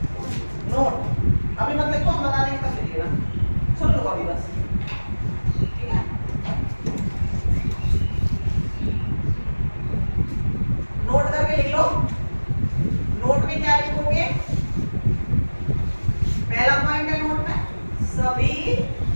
नोट। अभी मत लिखो, हम बता देंगे तब लिखिएगा। सुन लो अभी बस, ठीक है। नोट करके लिख लो। नोट में क्या लिखोगे, पहला पॉइंट है नोट में, सभी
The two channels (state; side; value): inverted; both; correlation -1.00